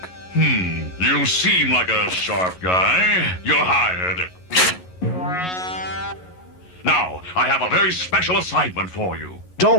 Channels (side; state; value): right; late; 11 ms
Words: You seem like a sharp guy. You're hired. Now, I have a very special assignment for you.